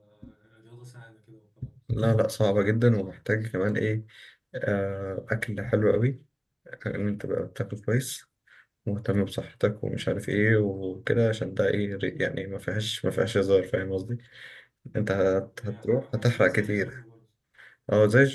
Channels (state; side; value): identical; both; correlation 1.00